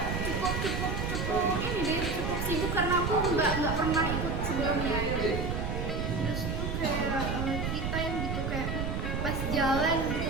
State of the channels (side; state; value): right; noise; rumble, 2 dB below the sound